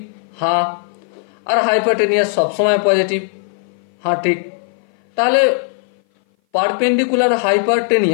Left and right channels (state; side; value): silent; right; 58 dB below the other